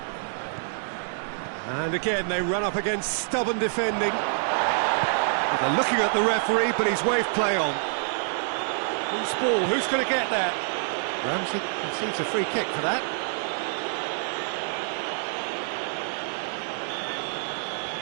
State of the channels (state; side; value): silent; left; 60 dB below the other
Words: And again, they run up against stubborn defending. They're looking at the referee, but he's waved play on. Loose ball, who's going to get that? Ramsey concedes a free kick for that.